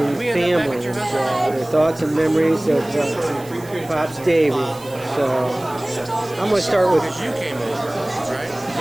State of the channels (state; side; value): noise; right; hiss, 20 dB below the sound